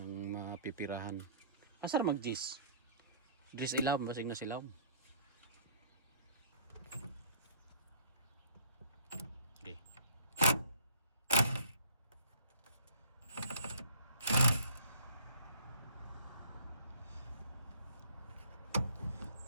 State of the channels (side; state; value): both; inverted; correlation -0.54